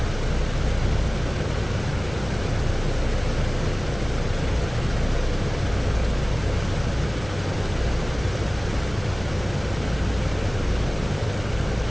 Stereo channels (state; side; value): noise; left; hum, 15 dB below the sound